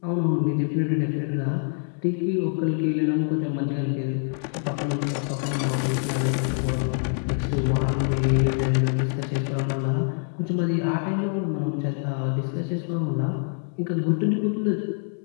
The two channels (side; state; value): right; silent; 58 dB below the other